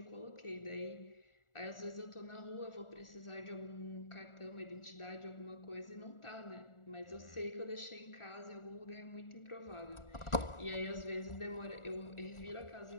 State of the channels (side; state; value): right; late; 1.4 ms